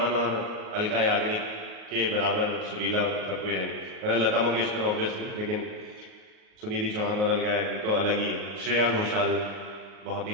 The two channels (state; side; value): late; left; 38 ms